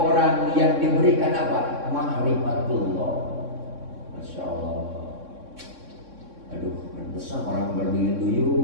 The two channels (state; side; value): late; left; 3.6 ms